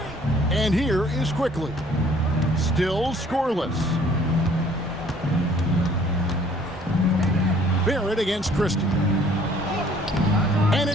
And here is Quickly. Still scoreless. Barrett against Christie. And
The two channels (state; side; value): normal; both; correlation 0.57